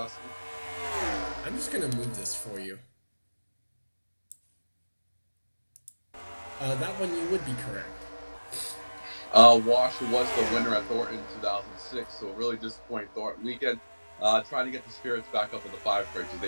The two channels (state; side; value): inverted; both; correlation -1.00